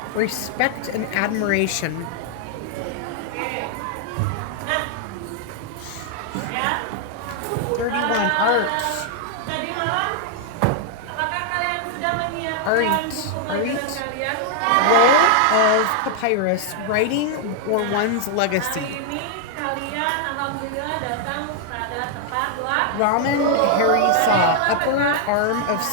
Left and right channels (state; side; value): different; both; correlation 0.00